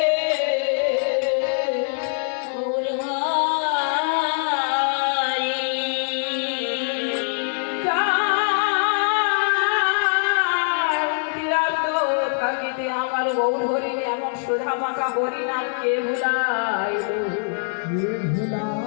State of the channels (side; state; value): right; silent; digital silence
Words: আমার গৌর হরি এমন সুধা মাখা হরিনাম কে ভুলাই?